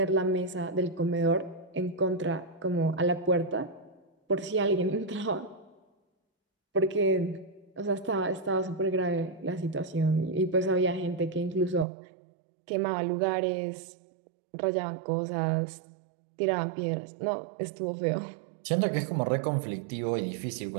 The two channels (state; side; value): drops out; left; at 11.9 s